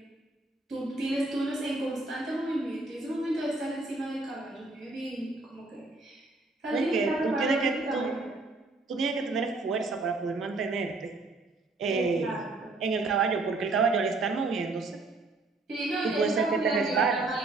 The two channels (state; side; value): quieter; left; 3.3 dB